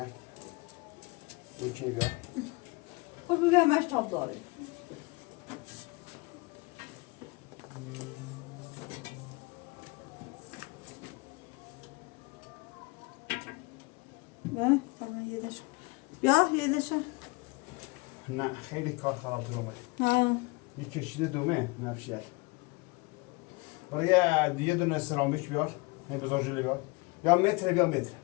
İki gör. O bir vermez tabları. Ba, tamam yedeş. Ya yedeşe. نه خیلی کار خراب شده. Ha. Bir kişide دومه نفشیه برای یه دونه سرامیک بیار هی بذار جلوی بیار یا متر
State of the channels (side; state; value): right; quieter; 26.4 dB